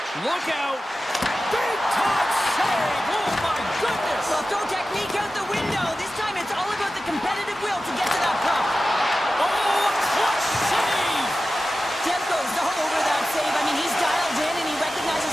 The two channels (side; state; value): both; normal; correlation 0.94